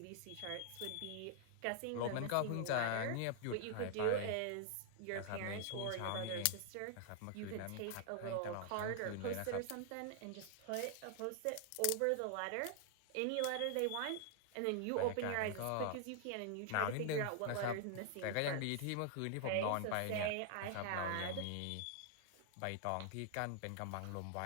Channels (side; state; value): both; different; correlation 0.00